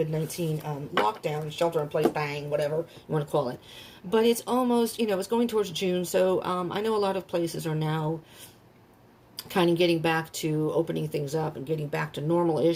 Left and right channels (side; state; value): both; identical; correlation 1.00